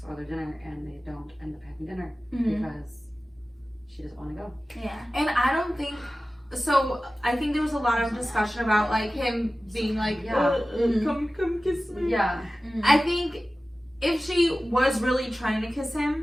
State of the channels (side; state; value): both; normal; correlation 0.96